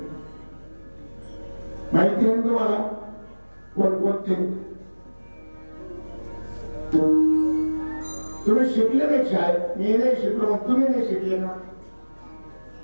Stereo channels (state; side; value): inverted; both; correlation -1.00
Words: माहिती आहे तुम्हाला? कोणकोणते? तुम्ही शिकले नाही शाळेत, मी नाही शिकलो, मग तुम्ही नाही शिकले ना?